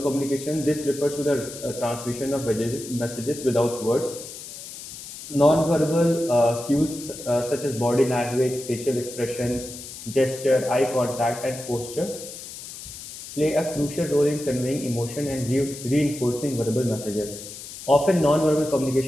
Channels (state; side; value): noise; left; hiss, 12 dB below the sound